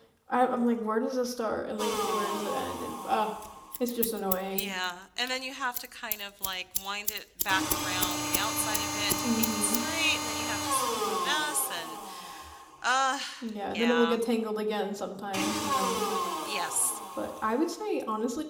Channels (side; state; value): both; identical; correlation 1.00